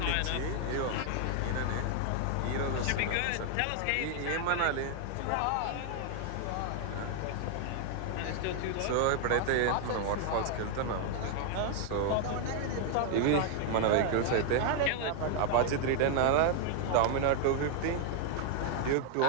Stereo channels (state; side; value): different; both; correlation 0.00